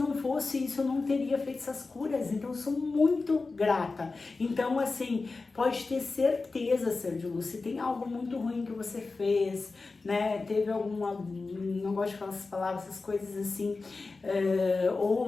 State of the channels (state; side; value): quieter; right; 3.9 dB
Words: fosse isso, eu não teria feito essas curas, então eu sou muito grata. Então, assim, pode ter certeza, Ser de Luz, se tem algo muito ruim que você fez, né, teve alguma, não gosto de falar essas palavras, essas coisas assim,